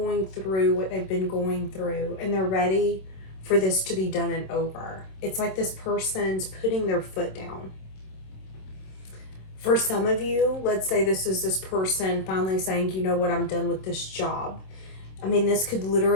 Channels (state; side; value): late; right; 27 ms